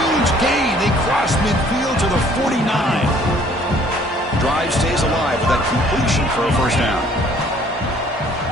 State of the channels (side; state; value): both; normal; correlation 0.58